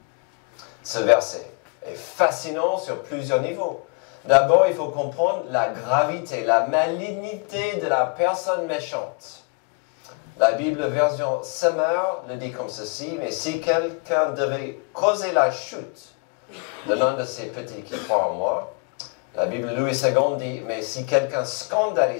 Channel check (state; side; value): quieter; right; 33.5 dB